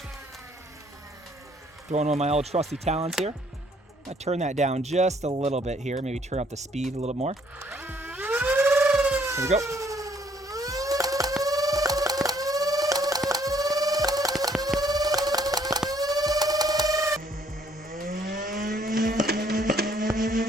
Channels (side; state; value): both; normal; correlation 0.64